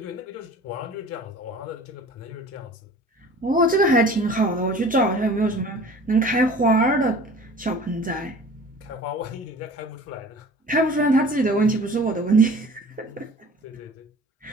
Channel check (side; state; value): both; normal; correlation 0.44